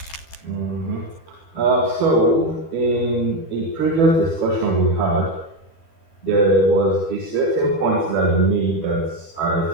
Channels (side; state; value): right; late; 12 ms